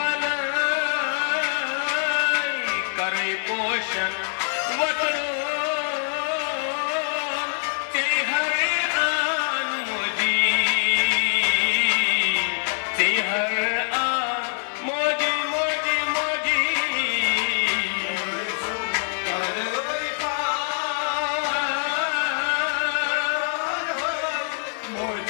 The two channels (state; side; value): silent; right; digital silence